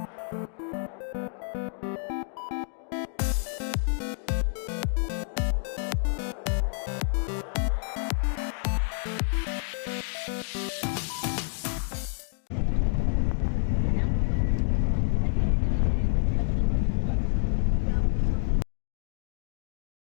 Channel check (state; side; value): silent; right; digital silence